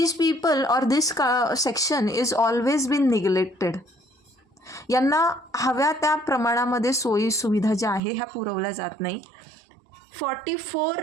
people or this section is always been neglected. यांना हव्या त्या प्रमाणामध्ये सोयी सुविधा ज्या आहे ह्या पुरवल्या जात नाही.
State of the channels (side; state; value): left; drops out; at 8.0 s